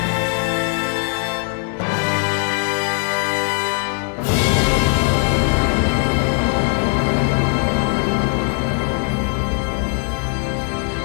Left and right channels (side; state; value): right; quieter; 39.6 dB